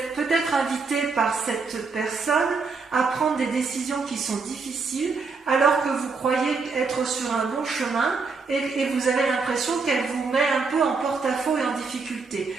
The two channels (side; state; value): left; quieter; 4.5 dB